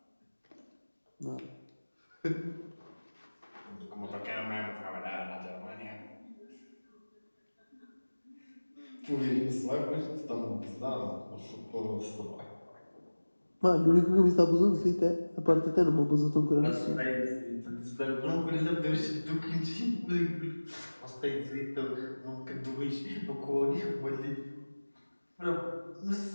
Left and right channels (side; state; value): both; inverted; correlation -1.00